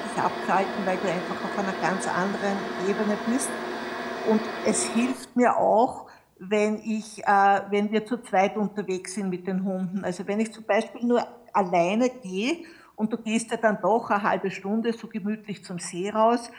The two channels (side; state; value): both; identical; correlation 1.00